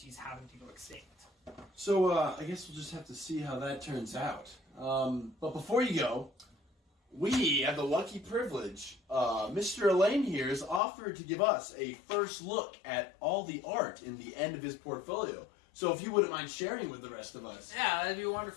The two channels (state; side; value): drops out; right; at 10.8 s